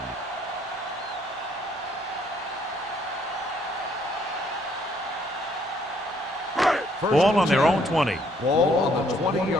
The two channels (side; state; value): both; normal; correlation 0.66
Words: Ball on their own 20. Ball on the